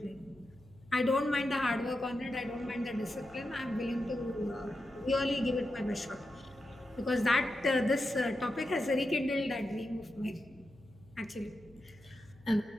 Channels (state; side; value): noise; left; hum, 25 dB below the sound